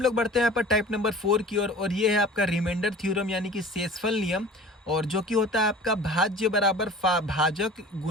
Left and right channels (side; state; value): both; normal; correlation 0.42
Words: लोग बढ़ते हैं यहाँ पर टाइप नंबर 4 की ओर, और ये है आपका रिमाइंडर थ्योरम यानी कि शेषफल नियम। और जो कि होता है आपका भाज्य बराबर भाजक